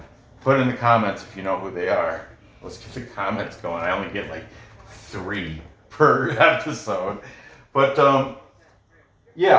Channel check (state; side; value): identical; both; correlation 1.00